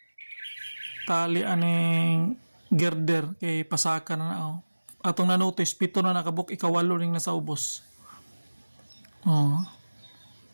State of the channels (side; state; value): both; inverted; correlation -1.00